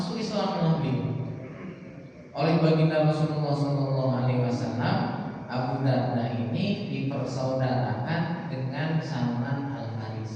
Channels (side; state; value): both; identical; correlation 1.00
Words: Islam lebih oleh baginda Rasulullah SAW. Abu Darda ini dipersaudarakan dengan Salman